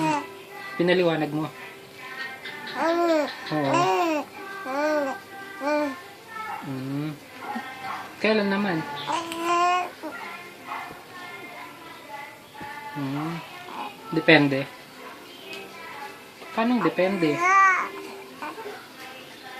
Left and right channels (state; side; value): identical; both; correlation 1.00